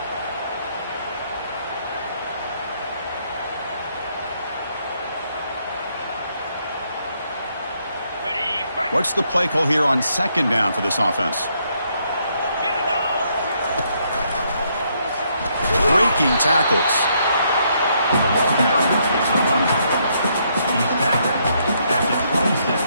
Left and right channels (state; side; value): inverted; both; correlation -0.73